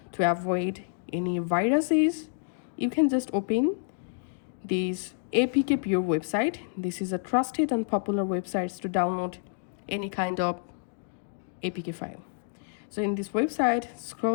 to avoid any viruses, you can just open this APK Pure website. This is a trusted and popular website to download any kind of APK file. So in this website,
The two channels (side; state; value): right; silent; digital silence